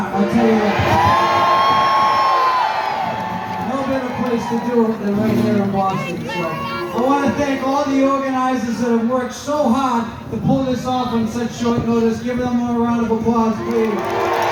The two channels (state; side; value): identical; both; correlation 1.00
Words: I'll tell you that. No better place to do it than right here in Boston. So I want to thank all the organizers that have worked so hard to pull this off on such short notice. Give them a round of applause, please.